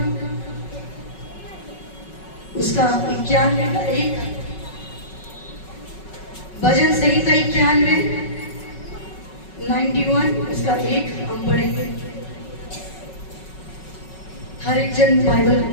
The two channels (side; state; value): right; late; 5.4 ms